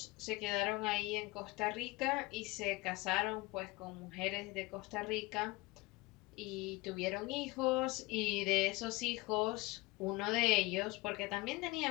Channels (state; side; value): quieter; right; 22.7 dB